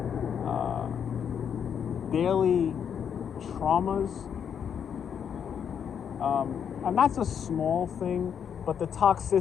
daily traumas, and that's a small thing, but the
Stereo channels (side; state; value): right; quieter; 7.9 dB